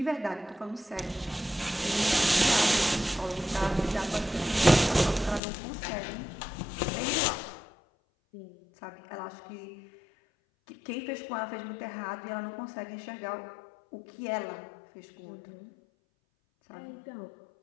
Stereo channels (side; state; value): right; drops out; at 5.4 s